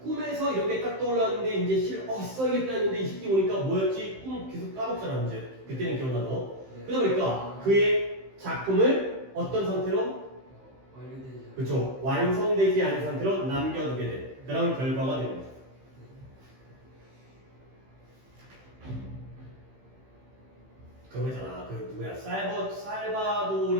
꿈에서 이렇게 딱 떠올랐는데 이제 써야겠다 했는데 이 새끼 오니까 뭐였지? 꿈 계속 까먹잖아 이제. 그때는 기억나도. 네. 그러다 보니까 그의 작품을 어떤 상태로? 완료되지 않은. 그렇죠. 완성되지 않은 상태로 남겨두게 된 그런 결과가 되는 거죠. 그거잖아. 그 누구야?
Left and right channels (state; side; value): late; left; 15 ms